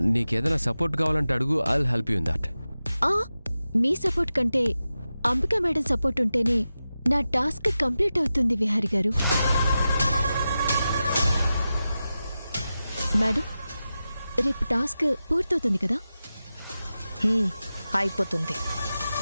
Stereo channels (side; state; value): both; inverted; correlation -0.93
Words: నీకేదైనా సపోర్ట్ కావాలంటే అడుగు, I'll help you in that. Me support కంటే అంబికా మేడం సపోర్ట్ ఉంటేనే నా టాస్క్ కంప్లీట్ అవుతుంది విహారి గారు. మేడం, రేపు టాస్క్ పూర్తవుతుంది కదా? అయిపోతుంది.